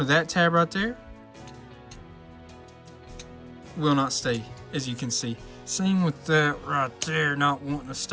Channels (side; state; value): both; identical; correlation 1.00